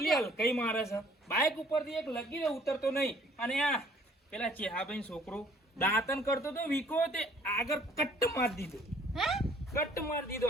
હલકાઈ મારે છે. બાઈક ઉપરથી એક લગીને ઉતરતો નહીં. અને આ પેલા ચેહાભાઈ છોકરો દાંતન કરતો તો વીકો તે આગળ કટ્ટ મારી દીધો. હે કટ્ટ મારી દીધો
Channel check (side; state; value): both; normal; correlation 0.57